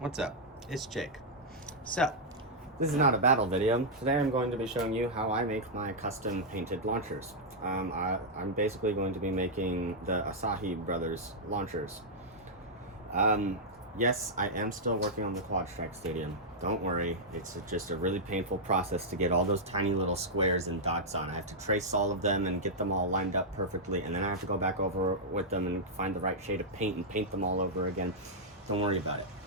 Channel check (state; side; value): normal; both; correlation -0.07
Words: up? It's Jake. So, this is not a battle video. Today I'm going to be showing you how I make my custom painted launchers. I'm basically going to be making the Asahi Brothers launchers. Yes, I am still working on the Quadstrike Stadium. Don't worry, it's just a really painful process to get all those tiny little squares and dots on. I have to trace all of them and get them all lined up perfectly, and then I have to go back over with them and find the right shade of paint and paint them all over again. Don't worry about it.